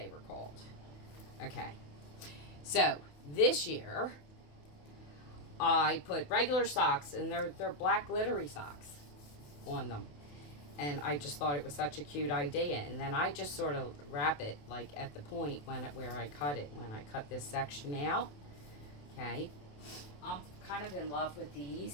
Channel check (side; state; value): right; late; 28 ms